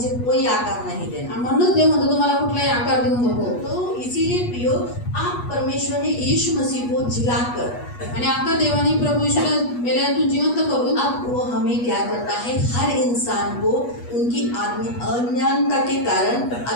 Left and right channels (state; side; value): late; right; 8.3 ms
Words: कोई आकार नहीं देना। आणि म्हणूनच देव म्हणतो तुम्हाला कुठलाही आकार देऊ नको. तो इसीलिए प्रियो आप परमेश्वर ने यीशु मसीह को जिलाकर आणि आता देवाने प्रभू यीशूला मेल्यातून जिवंत करून अब वो हमें क्या करता है, हर इंसान को उनकी अज्ञानता के कारण